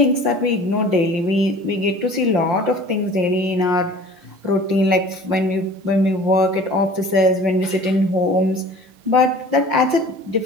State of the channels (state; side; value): late; left; 5.7 ms